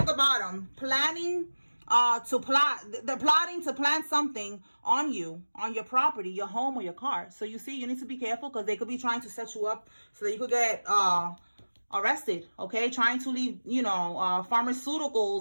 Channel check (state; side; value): inverted; both; correlation -1.00